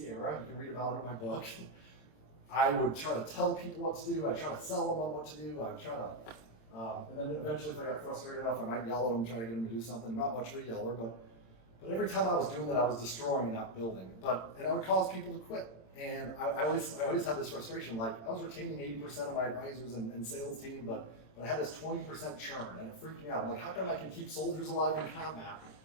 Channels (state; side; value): late; right; 26 ms